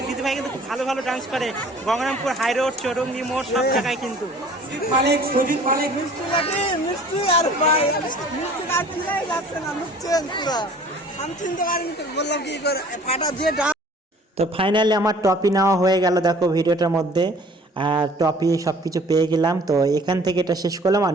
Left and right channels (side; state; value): both; normal; correlation 0.51